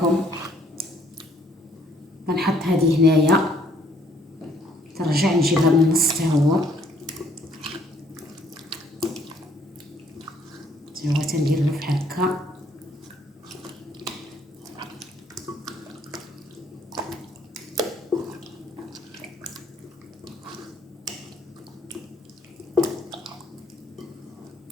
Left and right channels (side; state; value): both; normal; correlation 0.64